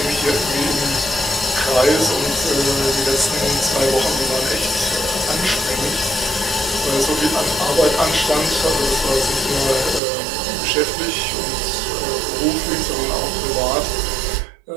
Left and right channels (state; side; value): drops out; left; at 10.0 s